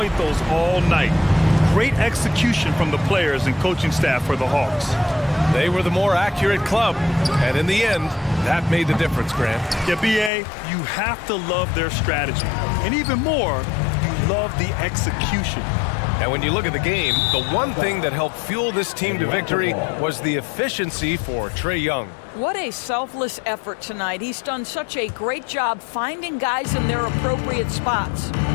those all night. Great execution from the players and coaching staff for the Hawks. They were the more accurate club, and in the end, that made the difference, Grant. Yeah, B.A., you have to love their strategy. And even more, you love the execution. And when you look at the game, the one thing that helped fuel this team to victory was the efficiency for Trae Young. What a selfless effort tonight. He's done such a great job finding guys in their appropriate spots.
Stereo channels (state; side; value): drops out; right; at 10.3 s